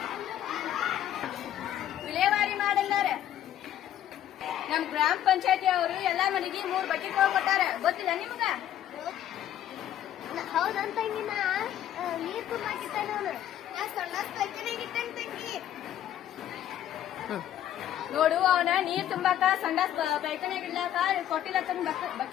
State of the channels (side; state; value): right; quieter; 11.5 dB